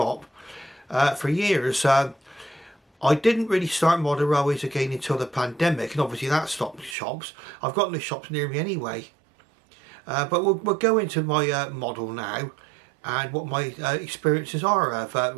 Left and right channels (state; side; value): drops out; left; at 7.0 s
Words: for years. I didn't really start model railways again until the pandemic, and obviously that stopped shops. I've got no shops near me anyway. But we'll go into my model now and what my experiences are of